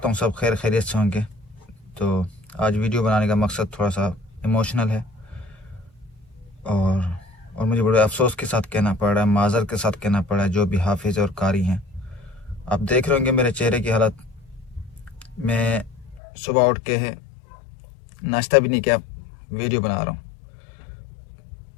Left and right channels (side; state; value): right; drops out; at 16.2 s